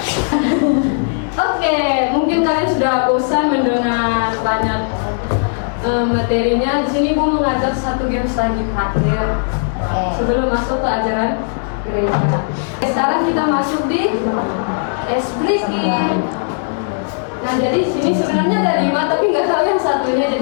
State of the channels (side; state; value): right; silent; digital silence